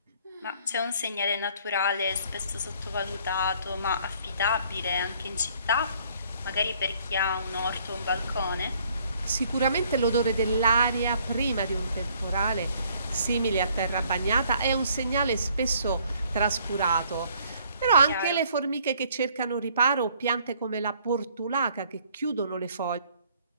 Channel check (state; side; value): inverted; both; correlation -0.62